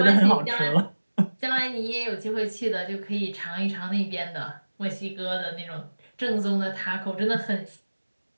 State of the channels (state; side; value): inverted; both; correlation -1.00